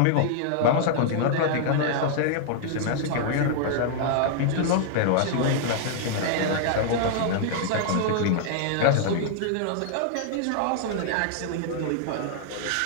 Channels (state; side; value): different; both; correlation -0.01